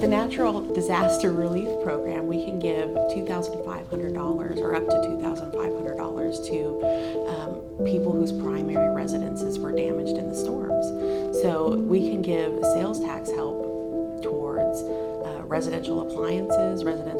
natural disaster relief program, we can give $2,500 or up to $2,500 to people whose primary residences were damaged in the storms. So we can give sales tax help towards residential appliances,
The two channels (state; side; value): identical; both; correlation 1.00